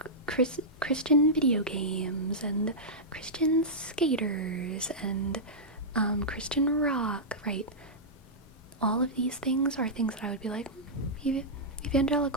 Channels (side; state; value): both; normal; correlation -0.12